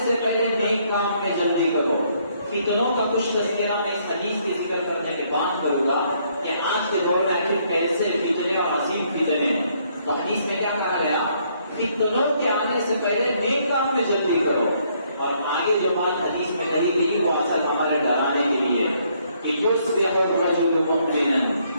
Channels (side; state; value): both; inverted; correlation -0.69